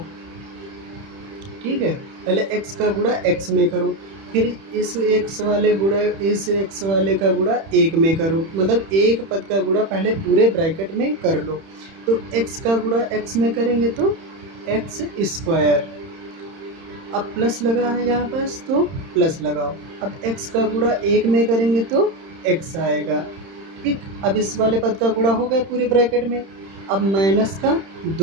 ठीक है। पहले x का गुणा x में करो, फिर इस x वाले गुणा इस x वाले का गुणा 1 में करो। मतलब एक पद का गुणा पहले पूरे ब्रैकेट में कर लो। तो x का गुणा x में करेंगे तो x स्क्वायर, अब प्लस लगा है यहाँ पास तो प्लस लगाओ। अब x का गुणा 1 में करेंगे तो x आएगा, ठीक। अब इस वाले पद का गुणा हो गया पूरे ब्रैकेट में। अब माइनस का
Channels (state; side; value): late; left; 31 ms